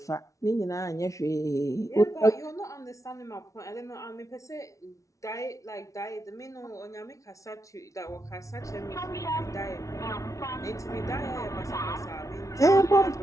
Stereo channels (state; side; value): late; right; 0.16 ms